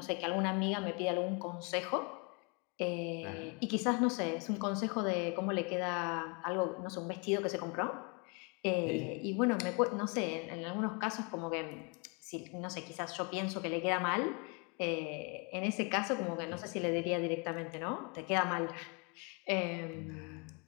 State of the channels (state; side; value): quieter; right; 32.9 dB